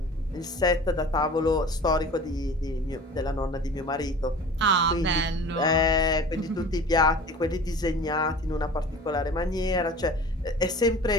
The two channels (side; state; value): both; normal; correlation 0.41